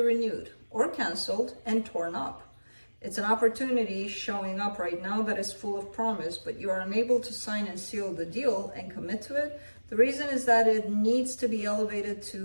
or canceled and torn up. It's an opportunity showing up right now that is full of promise, but you are unable to sign and seal the deal and commit to it. The reason is that it needs to be elevated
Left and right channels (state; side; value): inverted; both; correlation -1.00